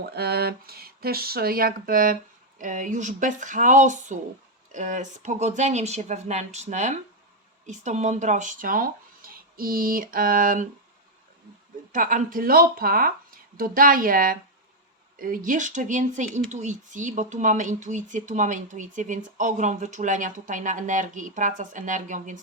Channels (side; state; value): both; normal; correlation 0.00